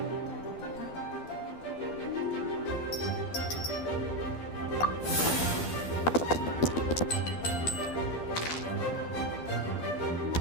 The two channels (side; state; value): right; late; 12 ms